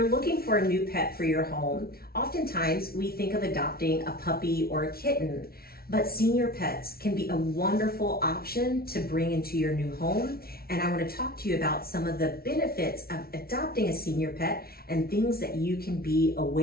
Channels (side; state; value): right; late; 0.44 ms